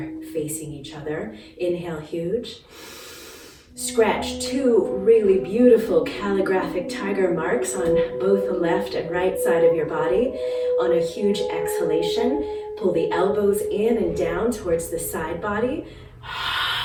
facing each other. Inhale huge. Scratch two really beautiful calligraphic tiger marks on both the left and right side of your body. On a huge exhalation, pull the elbows in and down towards the side body.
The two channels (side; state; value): both; identical; correlation 1.00